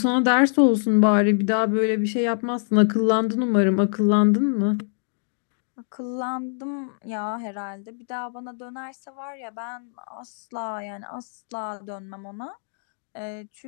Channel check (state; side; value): silent; right; digital silence